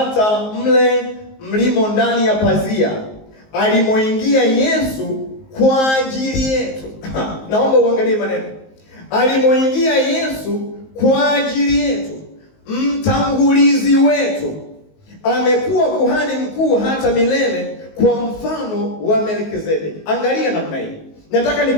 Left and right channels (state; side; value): late; right; 19 ms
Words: mle mlimo ndani ya pazia, alimoingia Yesu kwa ajili yetu. Naomba uangalie maneno. Alimoingia Yesu kwa ajili yetu, mtangulizi wetu, amekuwa kuhani mkuu hata milele kwa mfano wa Melkizedeki. Angalia namna hii. Nataka